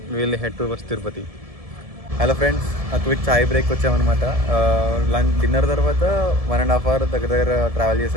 will head towards Tirupati. Hello friends, quick chai break వచ్చామన్నమాట. డిన్నర్ తర్వాత 1.5 hour దగ్గర ట్రావెల్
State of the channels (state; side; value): late; left; 1.7 ms